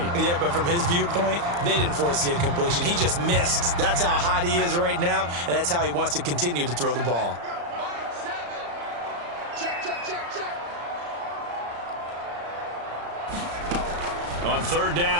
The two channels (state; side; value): late; left; 35 ms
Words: Yeah, but from his viewpoint, they didn't force the incompletion. He just missed. That's how hot he is right now, and that's how he wants to continue to throw the ball. On 3rd